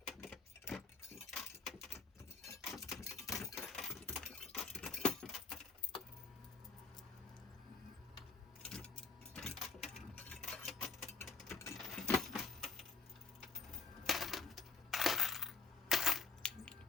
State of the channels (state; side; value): quieter; right; 4.6 dB